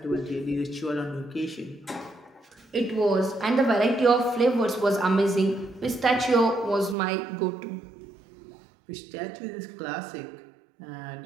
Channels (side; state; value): left; drops out; at 7.0 s